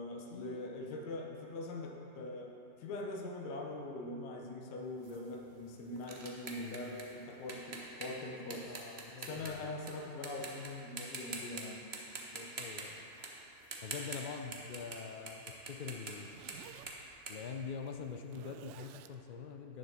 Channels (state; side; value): late; left; 3.0 ms